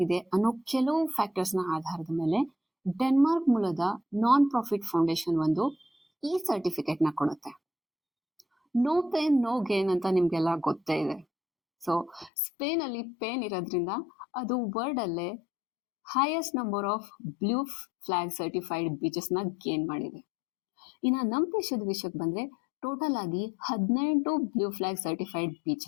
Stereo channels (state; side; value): drops out; right; at 12.3 s